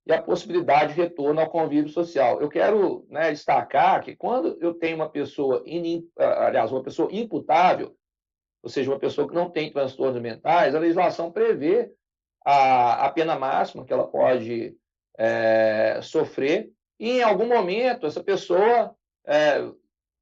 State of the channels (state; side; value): identical; both; correlation 1.00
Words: e a possibilidade de retorno ao convívio social. Eu quero, né, destacar que quando eu tenho uma pessoa imputável, ou seja, uma pessoa que não tem transtornos mentais, a legislação prevê a pena máxima que ela pode sofrer, e em algum momento essa pessoa